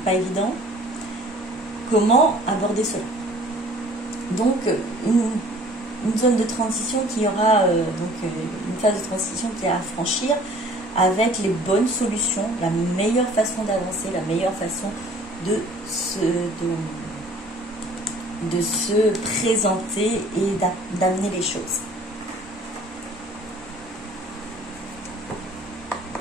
pas évident. Comment aborder cela? Donc, une zone de transition qui aura, une phase de transition qui est à franchir avec les bonnes solutions, la meilleure façon d'avancer, la meilleure façon de se présenter et d'amener les choses.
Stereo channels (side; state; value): both; normal; correlation 0.52